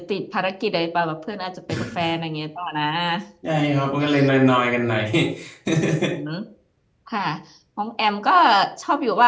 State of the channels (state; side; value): identical; both; correlation 1.00